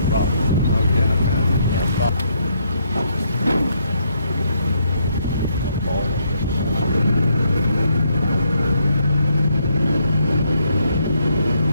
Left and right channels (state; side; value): inverted; both; correlation -0.74